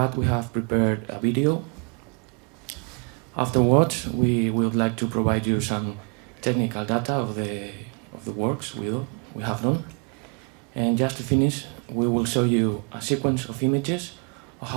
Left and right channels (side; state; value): left; quieter; 37.5 dB